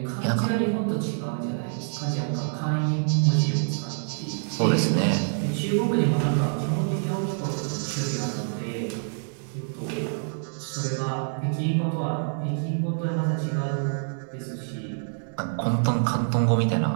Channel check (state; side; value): silent; left; digital silence